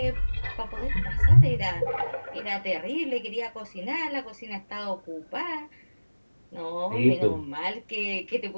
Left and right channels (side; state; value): both; inverted; correlation -1.00